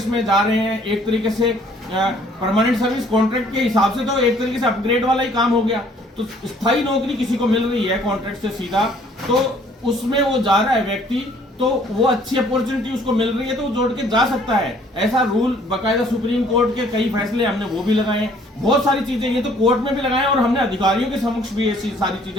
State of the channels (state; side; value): normal; both; correlation 0.59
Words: में जा रहे हैं, एक तरीके से परमानेंट सर्विस कॉन्ट्रैक्ट के हिसाब से तो एक तरीके से अपग्रेड वाला ही काम हो गया। तो स्थायी नौकरी किसी को मिल रही है कॉन्ट्रैक्ट से सीधा, तो उसमें वो जा रहा है व्यक्ति, तो वो अच्छी अपॉर्चुनिटी उसको मिल रही है तो वो जोड़ के जा सकता है। ऐसा रूल बकायदा सुप्रीम कोर्ट के कई फैसले हमने वो भी लगाए हैं, बहुत सारी चीजें ये तो कोर्ट में भी लगाए हैं और हमने अधिकारियों के समक्ष भी ऐसी सारी